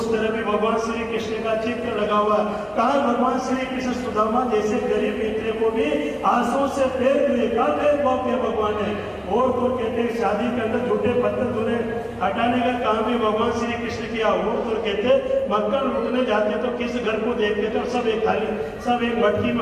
तरह भी भगवान श्री कृष्ण का चित्र लगा हुआ है। कहा भगवान श्री कृष्ण सुदामा जैसे गरीब मित्र को भी आंसू से फेर दिए, कहा भेदभाव किया भगवान ने। और तो कहते हैं शादी के अंदर झूठे पत्थर धुने हटाने का काम भी भगवान श्री कृष्ण किया। और तो कहते मक्खन लूटने जाते तो किस घर को देखते थे और सब एक थाली, सब एक मटकी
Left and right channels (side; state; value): both; identical; correlation 1.00